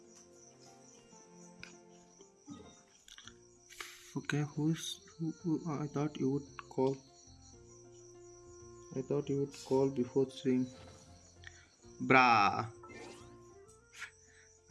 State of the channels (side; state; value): both; identical; correlation 1.00